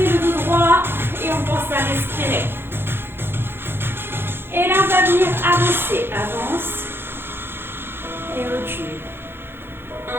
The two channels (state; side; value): late; left; 0.11 ms